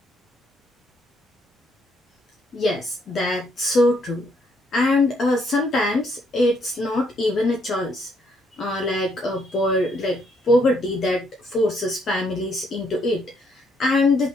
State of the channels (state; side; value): normal; both; correlation 0.71